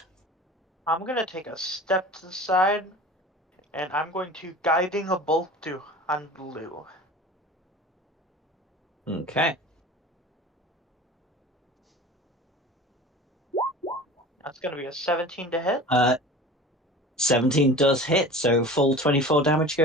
I'm gonna take a step to the side, and I'm going to guiding a bolt to on blue. Okay. That's gonna be a 17 to hit. 17 does hit, so full 24 damage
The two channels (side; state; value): both; normal; correlation 0.38